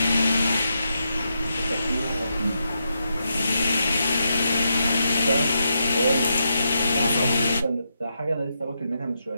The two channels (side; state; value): both; inverted; correlation -0.83